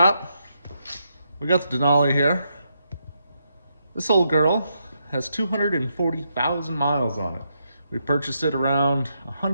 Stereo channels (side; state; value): both; inverted; correlation -0.80